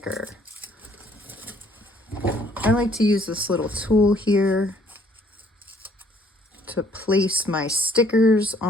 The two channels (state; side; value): normal; both; correlation 0.63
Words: I like to use this little tool here to place my stickers